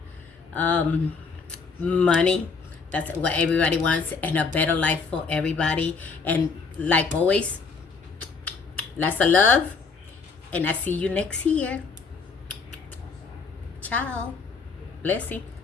money. That's what everybody wants, and a better life for everybody. And like always, lots of love, and I see you next year. Ciao. Blessing.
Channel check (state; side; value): quieter; right; 4.8 dB